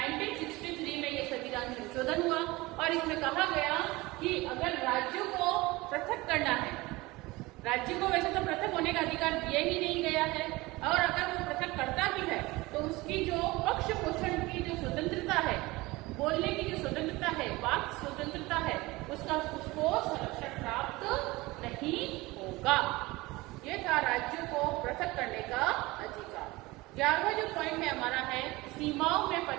में यह संविधान संशोधन हुआ और इसमें कहा गया कि अगर राज्यों को पृथक करना है, राज्य को वैसे तो पृथक होने का अधिकार दिया ही नहीं गया है, और अगर वो पृथक करता भी है तो उसकी जो पक्ष पोषण की जो स्वतंत्रता है, बोलने की जो स्वतंत्रता है, वाक स्वतंत्रता है, उसको संरक्षण प्राप्त नहीं होगा। ये था राज्यों को पृथक करने का अधिकार। 11वां जो पॉइंट है हमारा है, सीमाओं में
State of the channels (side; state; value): left; quieter; 21.3 dB